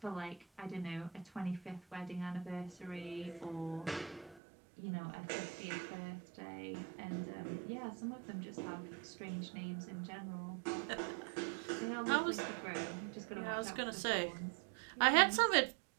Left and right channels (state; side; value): drops out; left; at 4.4 s